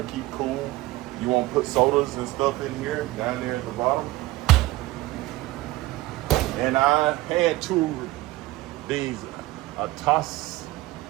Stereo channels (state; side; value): quieter; left; 18.0 dB